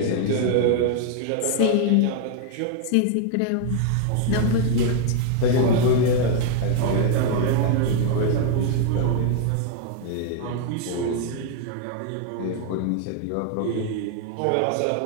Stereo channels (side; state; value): both; different; correlation 0.00